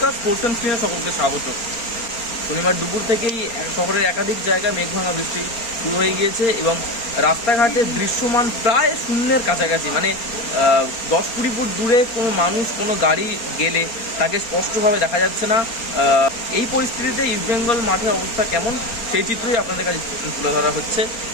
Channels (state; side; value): late; right; 4.4 ms